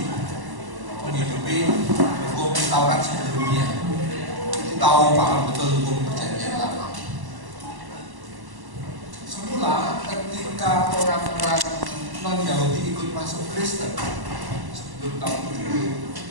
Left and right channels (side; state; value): left; late; 1.1 ms